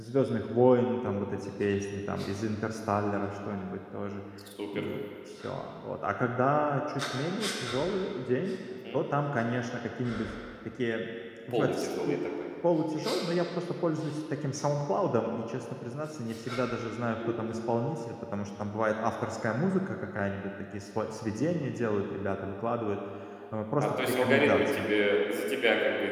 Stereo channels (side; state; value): both; identical; correlation 1.00